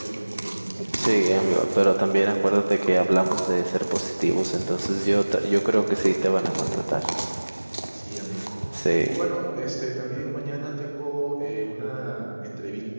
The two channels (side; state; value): both; inverted; correlation -1.00